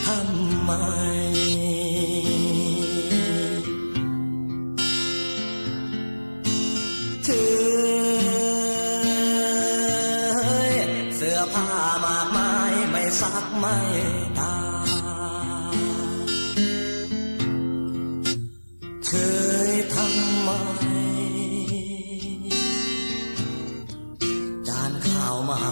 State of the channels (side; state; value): both; inverted; correlation -1.00